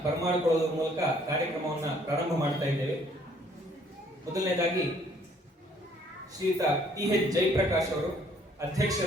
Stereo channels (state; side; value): normal; both; correlation 0.62